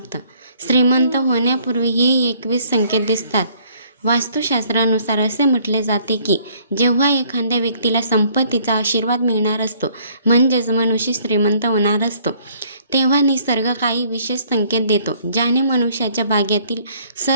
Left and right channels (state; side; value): inverted; both; correlation -0.61